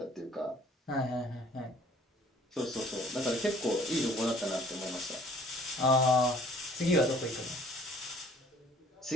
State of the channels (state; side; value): normal; both; correlation 0.54